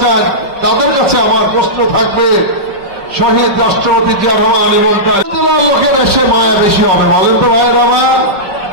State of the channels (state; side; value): late; left; 5.2 ms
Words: চান তাদের কাছে আমার প্রশ্ন থাকবে, শহীদ রাষ্ট্রপতি জিয়া রহমান এবং তার লোকের এসে মায়া বেশি হবে বলেন তো ভাই রহমান?